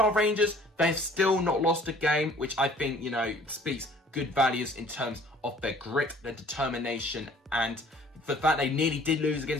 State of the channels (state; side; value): normal; both; correlation 0.54